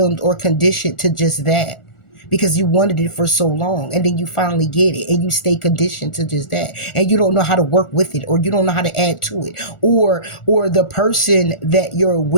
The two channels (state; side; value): late; right; 1.4 ms